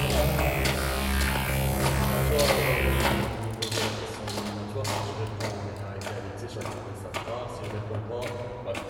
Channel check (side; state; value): both; identical; correlation 1.00